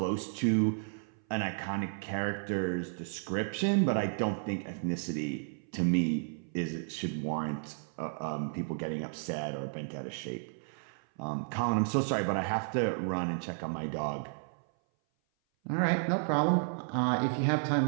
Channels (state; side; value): silent; left; 56 dB below the other